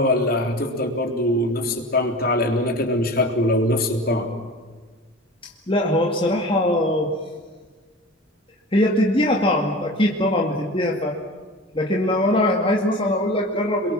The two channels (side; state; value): both; normal; correlation 0.36